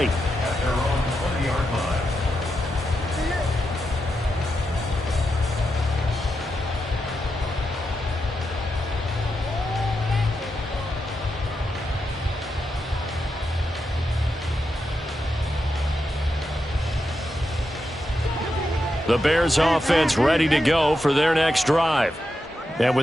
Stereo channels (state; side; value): normal; both; correlation 0.86